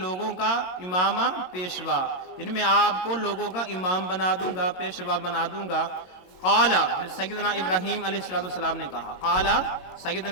لوگوں کا. امامہ پیشوا یعنی میں آپ کو لوگوں کا امام بنا دوں گا, پیشوا بنا دوں گا. قال سیدنا ابراہیم علیہ السلام نے کہا. قال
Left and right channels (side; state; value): right; late; 22 ms